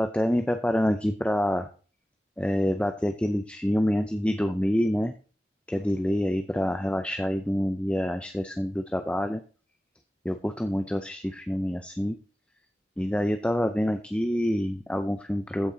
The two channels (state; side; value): normal; both; correlation 0.95